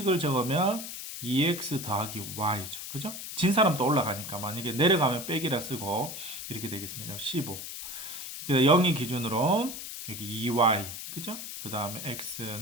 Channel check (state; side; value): noise; left; hiss, 8 dB below the sound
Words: 적으면 2x 더하기 y죠. 그죠? 진 사람도 올라가니까 만약에 내려가면 빼기라 쓰고 이렇게 되겠습니다. 15. 그래서 0이 기준으로 여기 2y. 그죠? 그 다음에